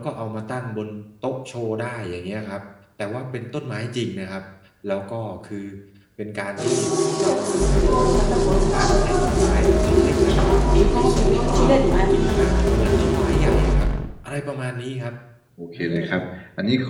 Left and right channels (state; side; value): identical; both; correlation 1.00